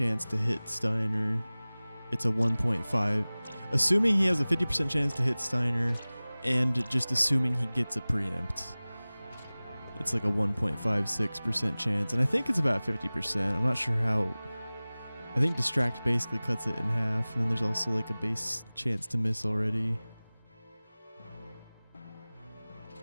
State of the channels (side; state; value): both; inverted; correlation -0.99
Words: to hit Steiner, it's a 1.5. Assuming he has a 50% chance to hit Steiner, and just assuming he gets a preempt, it's like a 1.56% chance. And I think it's about 50%. I'm not sure how. I think Distract basically cuts it in half, and then there's also like a base chance to miss already.